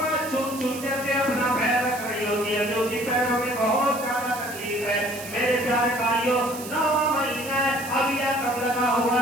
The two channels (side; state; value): right; noise; hiss, 12 dB below the sound